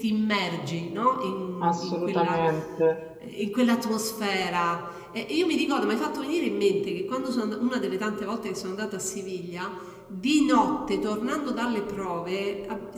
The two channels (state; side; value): identical; both; correlation 1.00